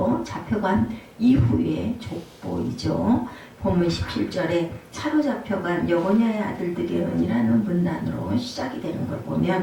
잡혀간 이후의 족보이죠. 본문 17절에 차로 잡혀간 여고냐의 아들들이라는 문단으로 시작이 되는 걸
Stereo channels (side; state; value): both; identical; correlation 1.00